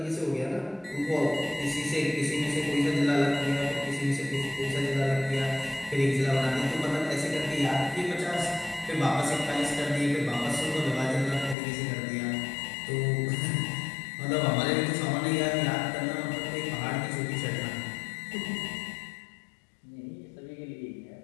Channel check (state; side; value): drops out; right; at 11.6 s